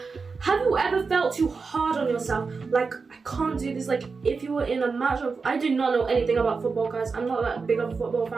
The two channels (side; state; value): left; quieter; 4.7 dB